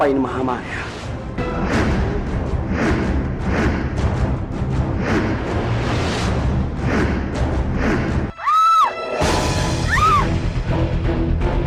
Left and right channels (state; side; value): identical; both; correlation 1.00